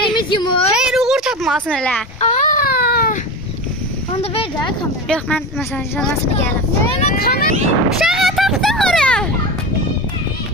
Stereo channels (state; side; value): normal; both; correlation 0.25